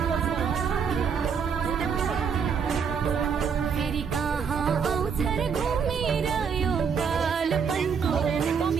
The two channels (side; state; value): left; quieter; 6.5 dB